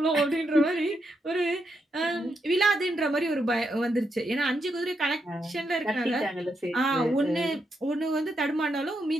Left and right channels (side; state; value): both; normal; correlation 0.82